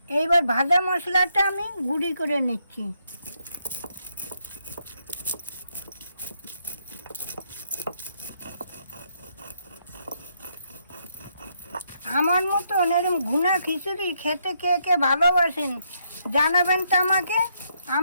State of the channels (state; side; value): inverted; both; correlation -0.76